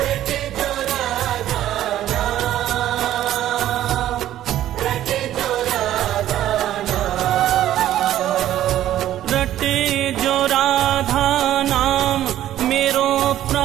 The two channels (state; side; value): quieter; left; 12.6 dB